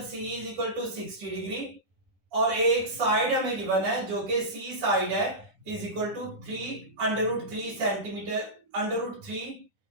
C is equal to 60 degree और एक साइड हमें गिवन है जो कि सी साइड है is equal to 3 centimetre, √3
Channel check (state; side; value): late; left; 9.8 ms